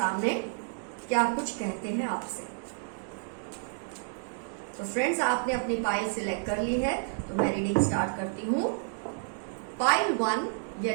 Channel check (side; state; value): left; silent; digital silence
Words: क्या कुछ कहते हैं आपसे। तो फ्रेंड्स, आपने अपनी पाइल सिलेक्ट कर ली है, तो मैं रीडिंग स्टार्ट करती हूं। पाइल 1